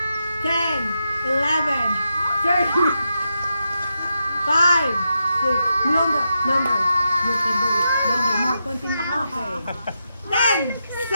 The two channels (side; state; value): both; inverted; correlation -0.86